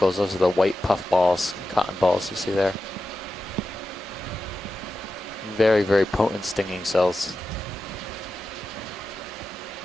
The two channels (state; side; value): normal; both; correlation 0.92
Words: Those are the white puff balls, cotton balls you see there. Very, very potent stinging cells.